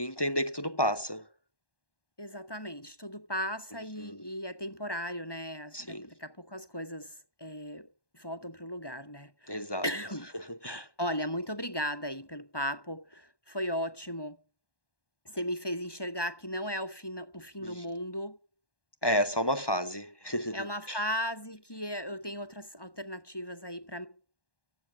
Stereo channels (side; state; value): right; late; 1.2 ms